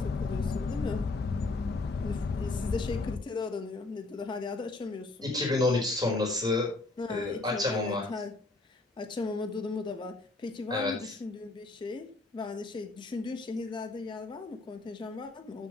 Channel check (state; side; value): quieter; right; 3.1 dB